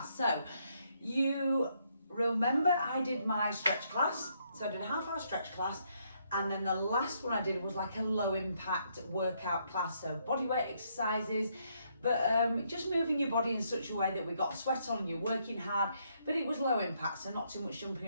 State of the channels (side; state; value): both; inverted; correlation -0.73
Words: So you remember I did my stretch class. So I did a half-hour stretch class, and then the last one I did was like a low impact workout class. So body weight exercises, but just moving your body in such a way that we got sweat on and you're working hard, but it was low impact, so not too much jumping